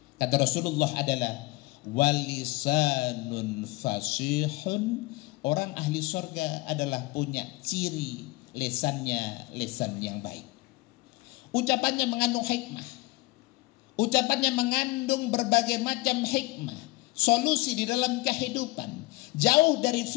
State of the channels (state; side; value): quieter; right; 22.0 dB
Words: kata Rasulullah adalah walisanun fasihun. Orang ahli surga adalah punya ciri lisannya lisan yang baik. Ucapannya mengandung hikmah, ucapannya mengandung berbagai macam hikmah, solusi di dalam kehidupan, jauh dari